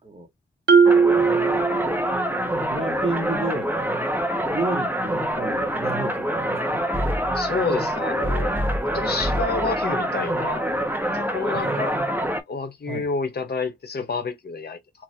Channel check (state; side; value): normal; both; correlation 0.63